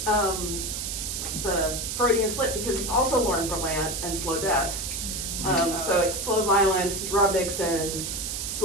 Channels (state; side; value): noise; right; hiss, 4 dB below the sound